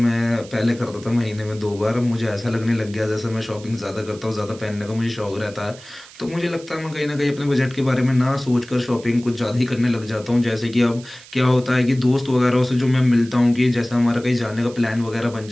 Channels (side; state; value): right; noise; hiss, 20 dB below the sound